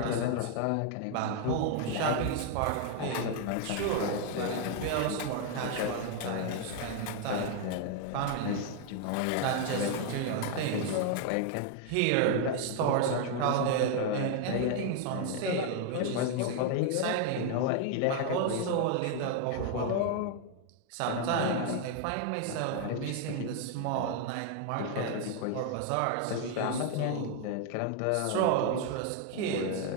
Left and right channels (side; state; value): both; different; correlation 0.00